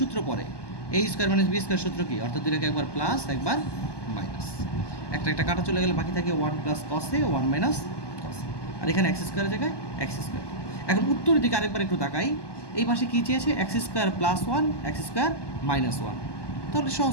সূত্র পড়ে a square minus B square সূত্র কি, অর্থাৎ দুইটাকে একবার প্লাস একবার মাইনাস, একটা একটা কাটা চলে গেলে বাকি থাকে 1 প্লাস কস এ 1 মাইনাস কস, আর এখানে এক্স স্কোয়ারের জায়গায় এক্স স্কোয়ার। এখন উত্তরের দিকে আরেকবার একটু তাকাই, এই পাশে কী চেয়েছে x square plus 1 x square minus 1, তাহলে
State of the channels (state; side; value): late; right; 1.2 ms